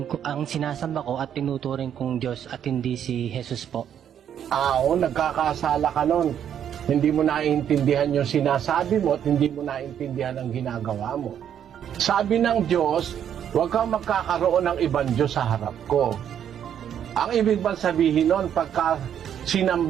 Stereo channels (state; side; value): quieter; left; 9.3 dB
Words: ko, ang sinasamba ko at tinuturing kong Diyos at hindi si Jesus po? Oo, nagkakasala ka nun. Hindi mo naiintindihan yung sinasabi mo at hindi mo naiintindihan ang ginagawa mo. Sabi ng Diyos, huwag kang magkakaroon ng ibang Diyos sa harap ko. Ang ibig bang sabihin nun, pagka